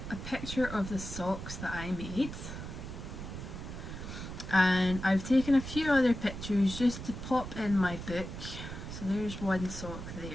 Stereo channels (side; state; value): right; noise; rumble, 8 dB below the sound